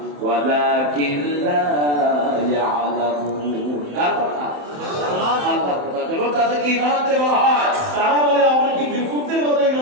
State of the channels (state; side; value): late; left; 27 ms